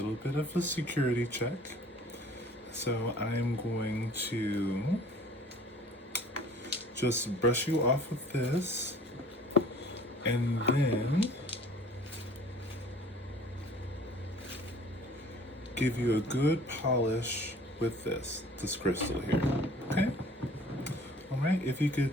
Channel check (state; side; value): normal; both; correlation 0.50